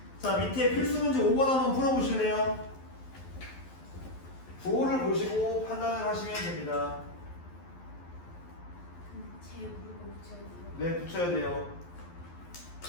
자, 밑에 필수 문제 5번 한번 풀어보실래요? 부호를 보시고 판단을 하시면 됩니다. 제 무릎을 붙여야 돼요. 네, 붙여야 돼요.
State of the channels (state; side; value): late; right; 12 ms